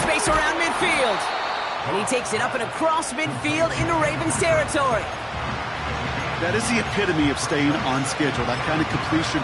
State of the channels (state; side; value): identical; both; correlation 1.00